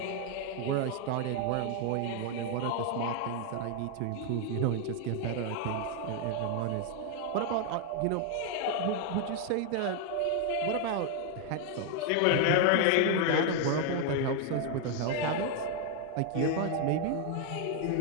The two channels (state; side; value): different; both; correlation 0.01